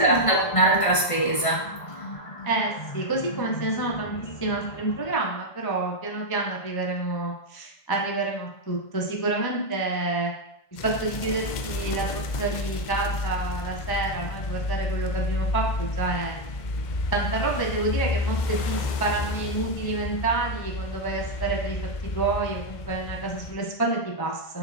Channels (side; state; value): right; late; 1.5 ms